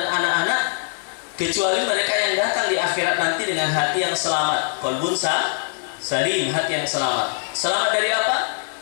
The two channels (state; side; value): silent; right; digital silence